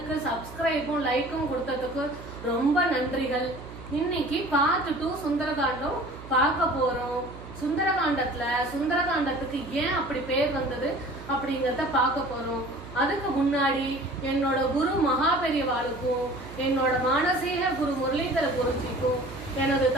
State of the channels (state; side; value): noise; right; hum, 15 dB below the sound